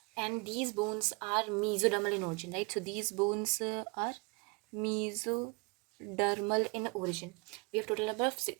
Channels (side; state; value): left; quieter; 29.2 dB